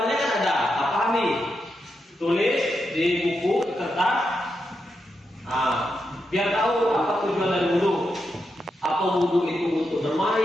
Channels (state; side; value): normal; both; correlation 0.85